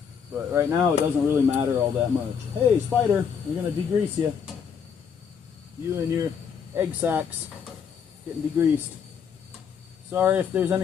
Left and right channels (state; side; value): quieter; right; 6.9 dB